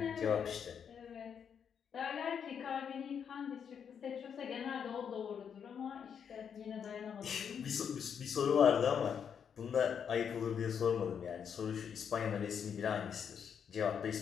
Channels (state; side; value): quieter; right; 7.5 dB